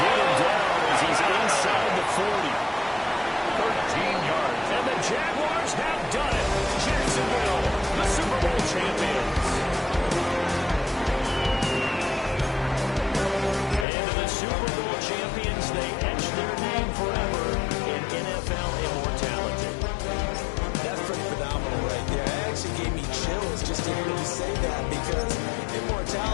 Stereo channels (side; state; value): right; drops out; at 13.9 s